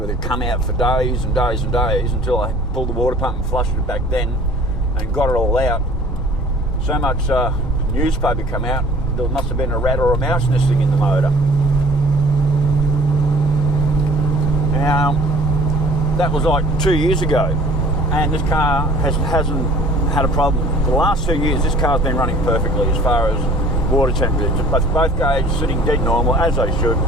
that come out for days and days and days until I pulled the water pump and flushed it back then and got it all out. So much newspaper come out, there must have been a rat or a mouse nesting in the motor. Now, that was like 2 years ago, and this car hasn't had a problem. For the last 2 years, this car's been running perfectly as far as water temperature. Both gauges sitting dead normal, as they should,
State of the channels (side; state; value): both; normal; correlation 0.50